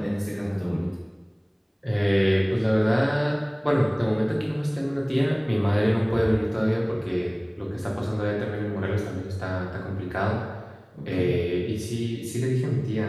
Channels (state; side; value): identical; both; correlation 1.00